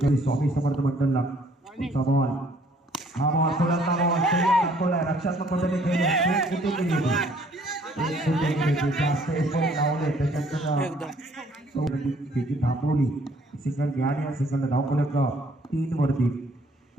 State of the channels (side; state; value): both; normal; correlation 0.61